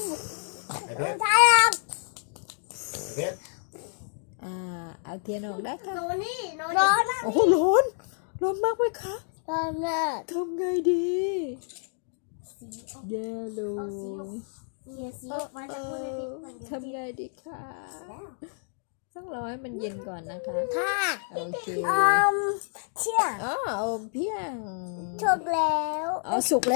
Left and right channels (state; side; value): silent; right; 59 dB below the other